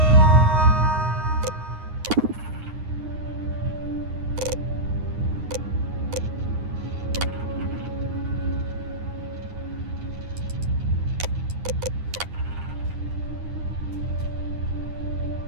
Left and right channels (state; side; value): late; left; 9.6 ms